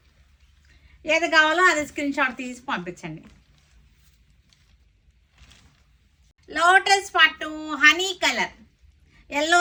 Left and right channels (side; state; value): both; identical; correlation 1.00